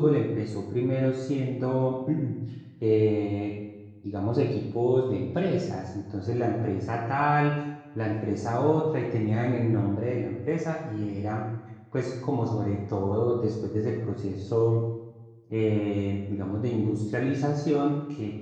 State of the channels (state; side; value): identical; both; correlation 1.00